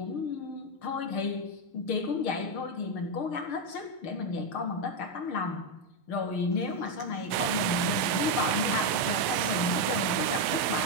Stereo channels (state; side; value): late; right; 6.5 ms